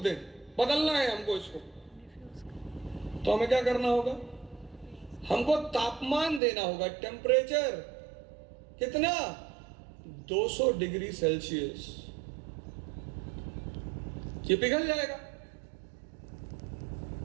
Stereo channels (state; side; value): drops out; left; at 6.4 s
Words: दें, बदलना है हमको इसको, तो हमें क्या करना होगा? हमको तापमान देना होगा, टेम्परेचर कितना, 200 डिग्री सेल्सियस। ये पिघल जाएगा,